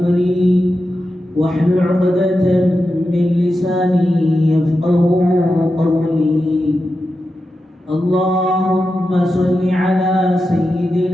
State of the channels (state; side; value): normal; both; correlation 0.90